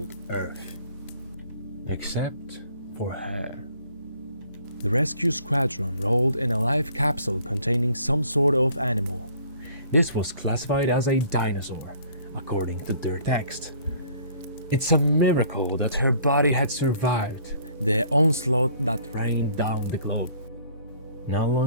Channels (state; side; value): inverted; both; correlation -0.56